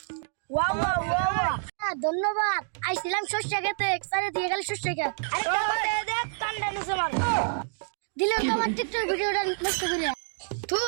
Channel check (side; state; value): left; silent; digital silence